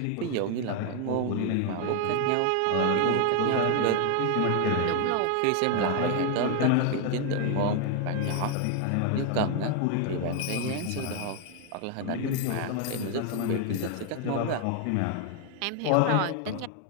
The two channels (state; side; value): different; both; correlation 0.01